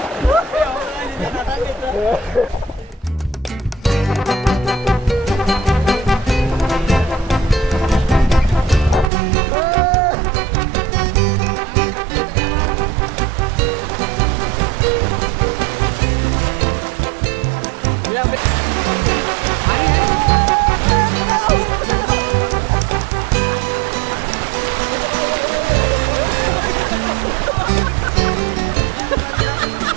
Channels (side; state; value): left; drops out; at 9.1 s